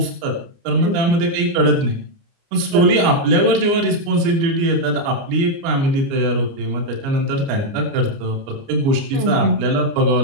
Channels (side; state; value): left; late; 29 ms